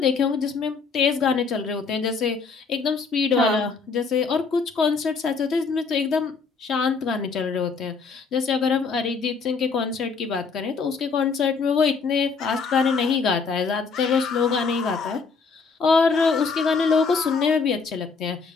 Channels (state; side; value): quieter; right; 5.0 dB